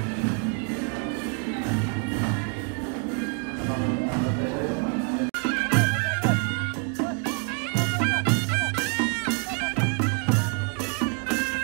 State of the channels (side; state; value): left; quieter; 38.7 dB